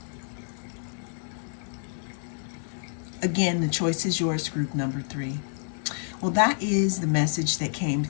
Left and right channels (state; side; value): silent; right; 59 dB below the other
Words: Again, the choice is yours, group number 3. Well, that is the message that came